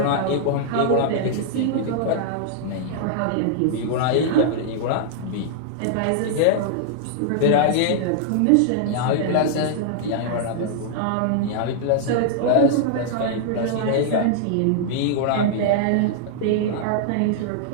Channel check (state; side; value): different; both; correlation -0.01